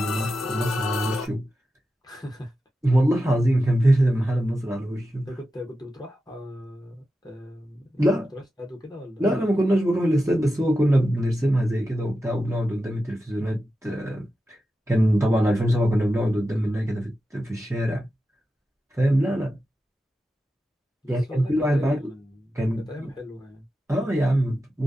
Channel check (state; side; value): normal; both; correlation 0.91